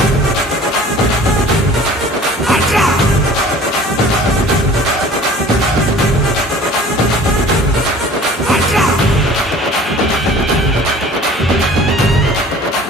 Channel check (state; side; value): normal; both; correlation 0.47